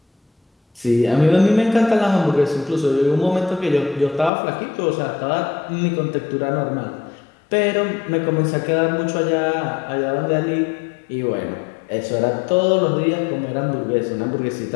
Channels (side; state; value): right; drops out; at 4.3 s